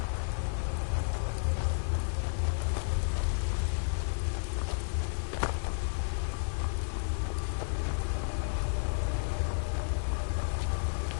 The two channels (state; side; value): silent; right; digital silence